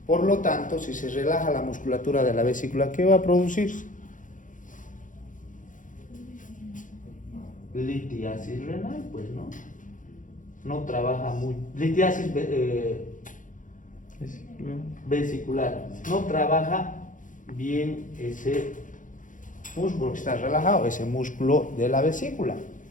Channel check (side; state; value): right; late; 0.38 ms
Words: Por lo tanto, si se relaja la musculatura de la vesícula, ¿qué va a producirse? Litiasis renal, pues no. No trabaja muy. Litiasis vesicular. No trabaja bien ese músculo que está relajado, ese músculo de la vesícula.